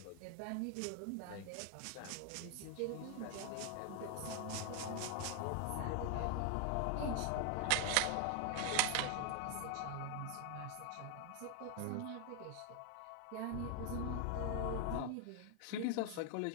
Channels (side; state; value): both; different; correlation 0.00